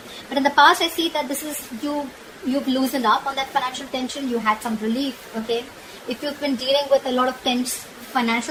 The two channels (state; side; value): identical; both; correlation 1.00